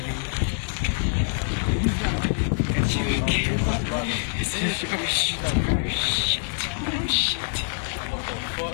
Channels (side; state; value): right; silent; 62 dB below the other